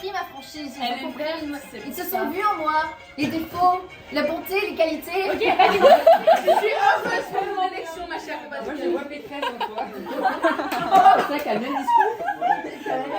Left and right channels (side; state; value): both; identical; correlation 1.00